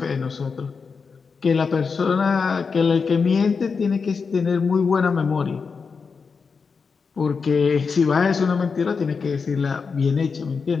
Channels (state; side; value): quieter; right; 5.2 dB